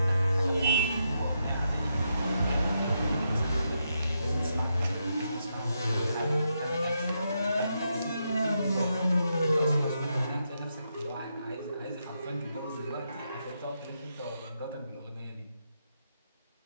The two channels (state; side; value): inverted; both; correlation -0.82